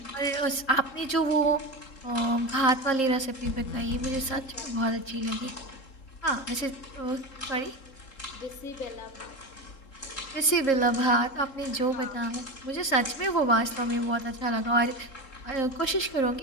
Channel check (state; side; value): late; right; 3.7 ms